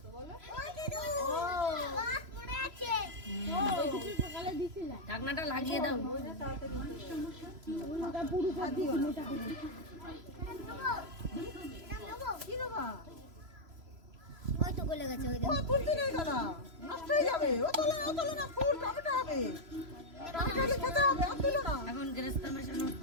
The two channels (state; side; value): late; left; 3.0 ms